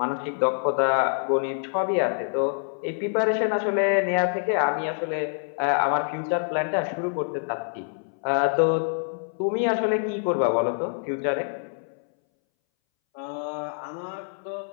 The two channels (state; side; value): silent; right; 61 dB below the other